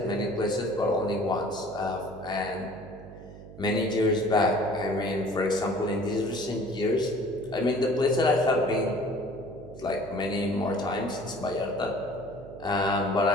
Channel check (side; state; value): right; noise; hum, 16 dB below the sound